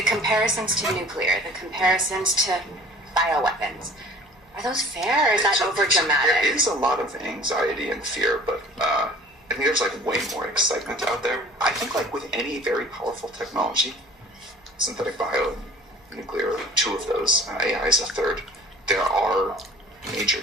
comparisons to nuclear, the comparisons to bioweapons. Are those fair, or is that overdramatic? There is a lot of anxiety and fear, but I think there's way more excitement out there. I think with any very powerful technology, synthetic bio, nuclear, two of those, AI is a third, there are major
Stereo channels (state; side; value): normal; both; correlation 0.47